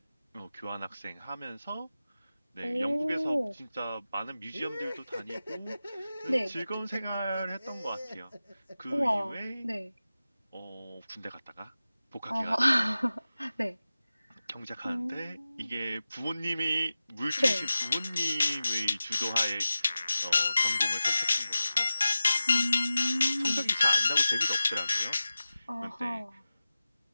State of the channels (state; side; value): inverted; both; correlation -0.94